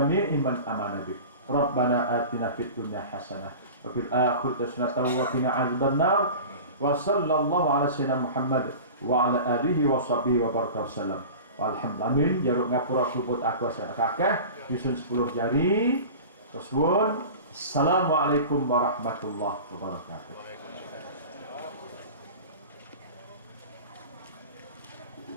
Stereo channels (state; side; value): inverted; both; correlation -0.35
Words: man amana bik. Rabbana atina fid dunya hasanah wa fil akhirati hasanah wa qina adzabannar. Wa sallallahu ala sayyidina Muhammad wa ala alihi wa sahbihi wa baraka wasallam. Alhamdulillah, jaruk ngapura kubut aku asal kakak nyusun 10 jari. Tersuwun. Assalamualaikum warahmatullahi wabarakatuh.